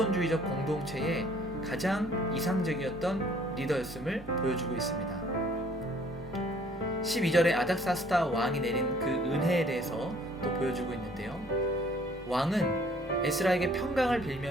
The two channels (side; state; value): both; normal; correlation 0.58